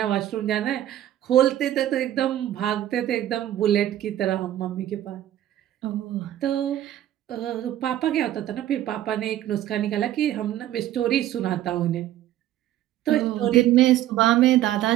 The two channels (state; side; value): quieter; left; 12.9 dB